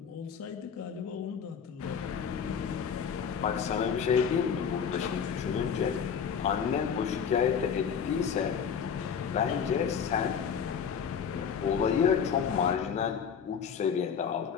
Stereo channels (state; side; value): quieter; right; 7.1 dB